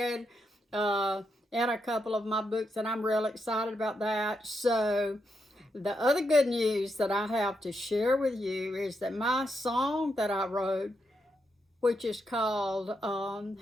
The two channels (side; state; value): both; normal; correlation 0.82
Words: in a couple of my books, and I'm real excited about that. So the other good news that I have to share with you is that my song that I wrote, which is called